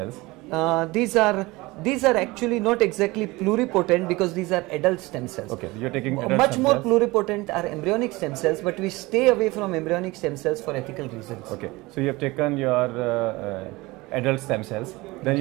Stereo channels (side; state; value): left; quieter; 21.7 dB